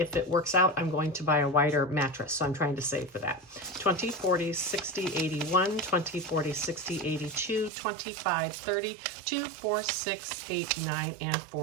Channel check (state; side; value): drops out; left; at 7.7 s